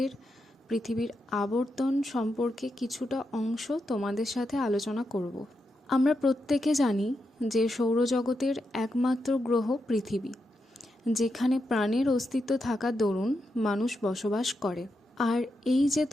পৃথিবীর আবর্তন সম্পর্কে কিছুটা অংশ তোমাদের সাথে আলোচনা করব। আমরা প্রত্যেকে জানি যে সৌরজগতের একমাত্র গ্রহ পৃথিবী, যেখানে প্রাণের অস্তিত্ব থাকার দরুন মানুষ বসবাস করে। আর এই যে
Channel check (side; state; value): both; normal; correlation 0.85